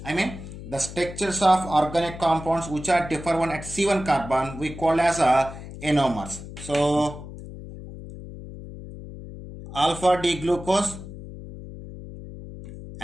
I mean the structures of organic compounds which are differ one at C1 carbon we call as anomers. So alpha D glucose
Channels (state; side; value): noise; left; hum, 12 dB below the sound